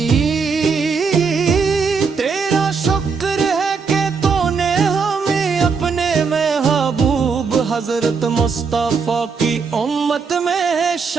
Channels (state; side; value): quieter; left; 5.3 dB